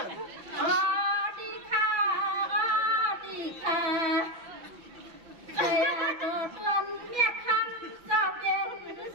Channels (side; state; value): left; late; 6.0 ms